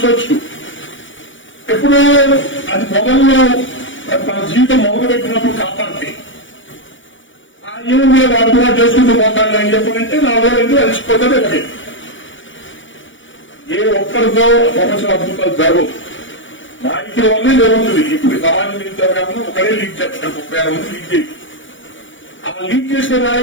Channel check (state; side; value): late; right; 0.56 ms